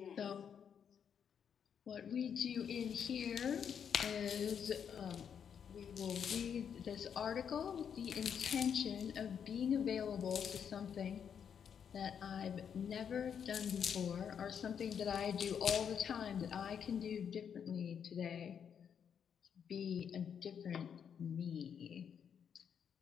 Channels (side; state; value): right; quieter; 7.8 dB